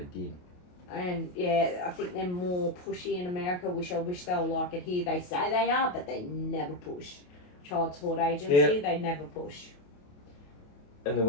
did. And yeah, I think they're more pushy in America, which I wish they were like it here. They say they are, but they never push. Child support agency, they never push. And the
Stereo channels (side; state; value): right; late; 28 ms